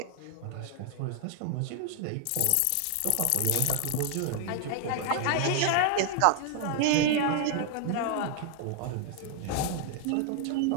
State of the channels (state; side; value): different; both; correlation 0.00